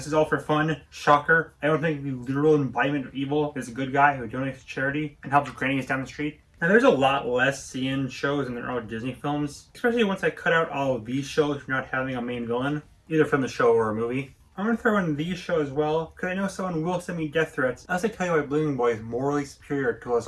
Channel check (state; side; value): identical; both; correlation 1.00